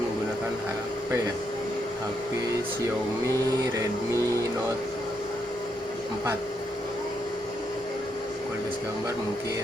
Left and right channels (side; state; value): both; normal; correlation 0.79